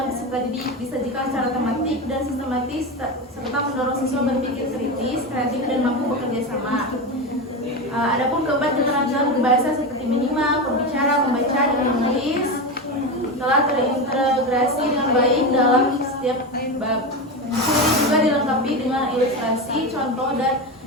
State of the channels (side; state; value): both; normal; correlation 0.18